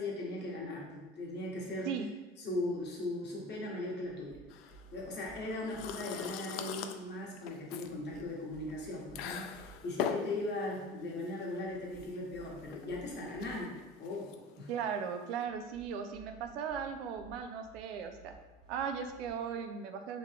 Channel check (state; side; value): normal; both; correlation 0.35